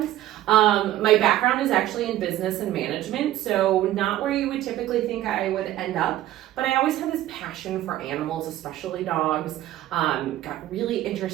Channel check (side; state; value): left; quieter; 14.0 dB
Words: My background is actually in business and management, so not where you would typically think I would end up, but I always had this passion for animals, especially dogs. Got really